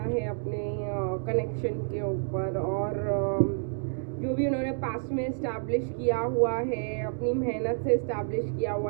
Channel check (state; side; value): silent; left; digital silence